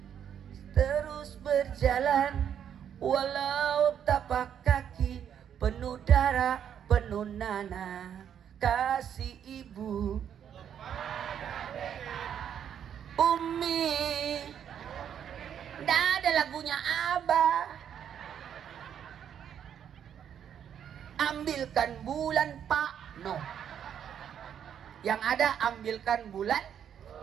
terus berjalan walau tapak kaki penuh darah, penuh nanah. Kasih ibu Umi. Nggak ada lagunya Abah. Ambilkan bulan Pak, no. Yang ada ambilkan bulan,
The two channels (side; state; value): left; quieter; 8.9 dB